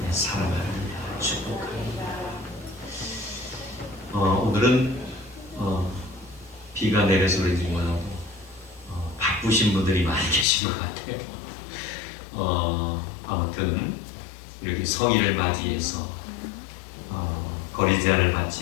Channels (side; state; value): right; drops out; at 10.5 s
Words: 사랑합니다. 축복합니다. 오늘은 비가 내려서 그런지 몰라도 바쁘신 분들이 많이 계신 것 같아요. 아무튼 이렇게 성인을 맞이해서 거리 제한을